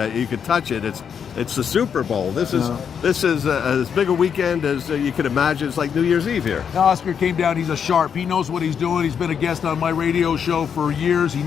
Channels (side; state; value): right; quieter; 7.4 dB